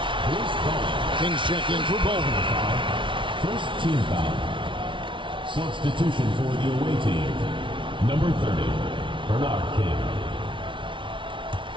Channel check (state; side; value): late; left; 0.24 ms